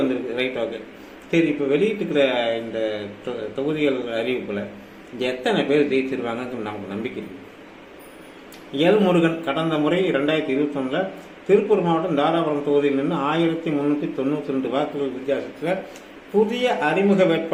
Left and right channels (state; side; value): identical; both; correlation 1.00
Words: வந்திருக்கு. ரைட், ஓகே, சரி. இப்போ வெளியிட்டுக்கிற இந்த தொகுதிகள் அறிவிப்பில் எத்தனை பேர் ஜெயிச்சிருவாங்கன்னு நமக்கு நம்பிக்கை இருக்கு. எல் முருகன் கடந்த முறை 2021 திருப்பூர் மாவட்டம் தாராபுரம் தொகுதியில் நின்று 1392 வாக்குகள் வித்தியாசத்தில் புதிய அறிமுக